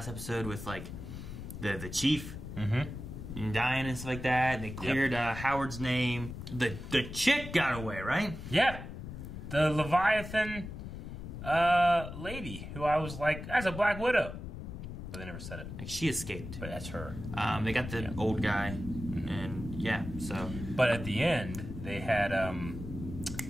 episode with like the chief and dying and stuff like that. And they cleared Howard's name. The chick got away, right? Yeah. The Leviathan lady who I was like, that's a Black Widow. But they never said it. Like she escaped. But that's her. They got the old guy, and yeah, so. But at the end, they had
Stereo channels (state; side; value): noise; left; rumble, 9 dB below the sound